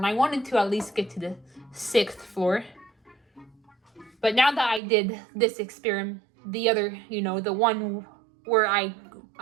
I wanted to at least get to the 6th floor. But now that I did this experiment, the other, the one where I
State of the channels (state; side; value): drops out; left; at 4.8 s